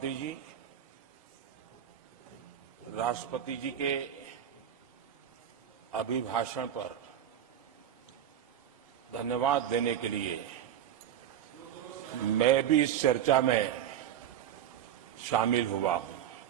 जी, राष्ट्रपति जी के अभिभाषण पर धन्यवाद देने के लिए मैं भी इस चर्चा में शामिल हुआ हूं।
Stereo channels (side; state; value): left; quieter; 10.2 dB